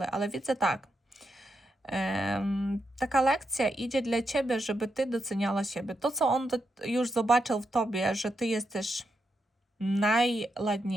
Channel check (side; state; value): both; normal; correlation 0.84